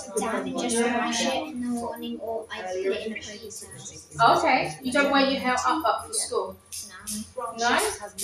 down and just wash it in the morning, or I put it in the previous house. Okay, you don't wear your hair up for school? Grant No? Shapps has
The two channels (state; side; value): identical; both; correlation 1.00